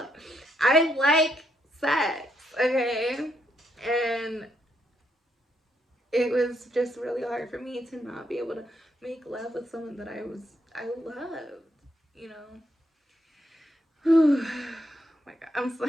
I like sex, okay? And it was just really hard for me to not be able to make love with someone that I loved, you know. Oh my God, I'm so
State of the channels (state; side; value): normal; both; correlation 0.77